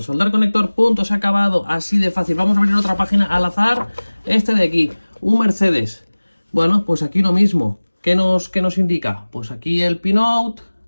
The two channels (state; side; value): inverted; both; correlation -1.00